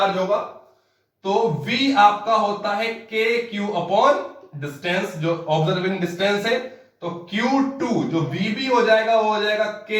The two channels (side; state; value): both; identical; correlation 1.00